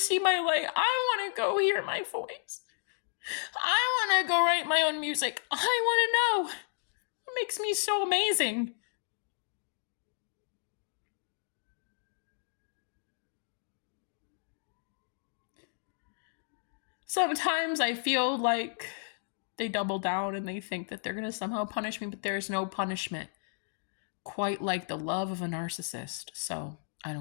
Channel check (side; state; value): right; silent; digital silence